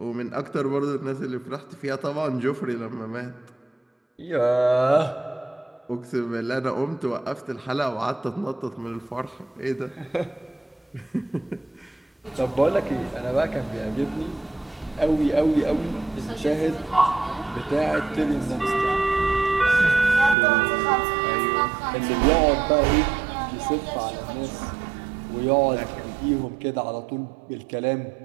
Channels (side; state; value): left; drops out; at 20.4 s